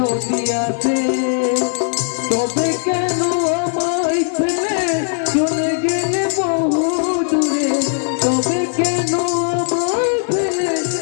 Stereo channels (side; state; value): right; silent; digital silence